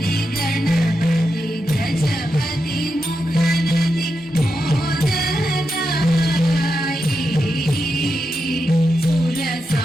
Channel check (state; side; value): normal; both; correlation 0.87